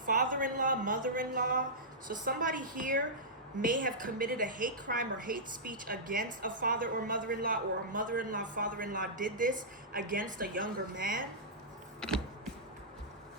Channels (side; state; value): both; normal; correlation -0.14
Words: father-in-law, mother-in-law. So somebody here may have committed a hate crime or hate speech against a father or mother-in-law, or a mother-in-law, father-in-law did this against a younger man.